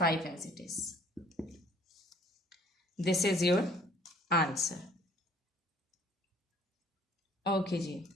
as it is. This is your answer. Okay ji.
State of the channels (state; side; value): normal; both; correlation 0.58